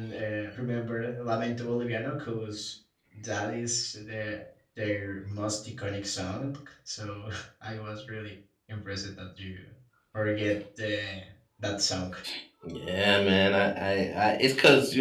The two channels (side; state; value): both; identical; correlation 1.00